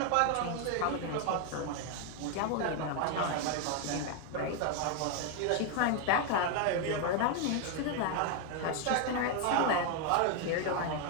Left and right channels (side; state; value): both; different; correlation 0.01